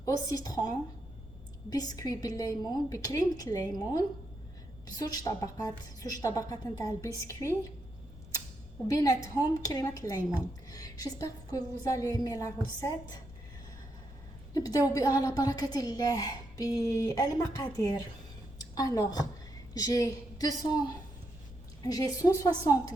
au citron, biscuit بالليمون بكريمة الليمون بزوج طبقات نتاع البسكوي وبيناتهم كريمة الليمون. J'espère que vous allez aimer la recette. نبداو على بركة الله بالمقادير. Alors, j'ai 160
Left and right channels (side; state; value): left; noise; rumble, 17 dB below the sound